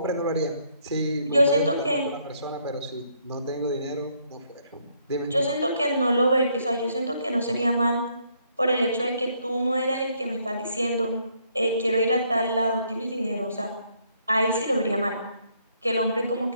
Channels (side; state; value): both; inverted; correlation -0.70